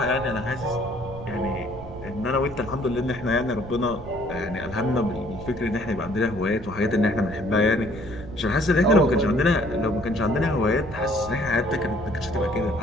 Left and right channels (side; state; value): right; noise; rumble, 13 dB below the sound